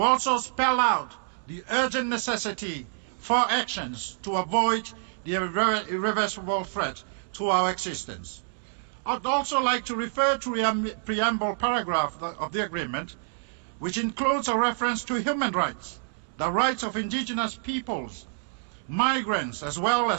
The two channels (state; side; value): silent; left; 60 dB below the other